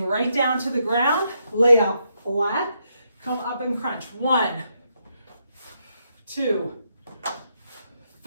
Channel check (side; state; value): both; inverted; correlation -0.79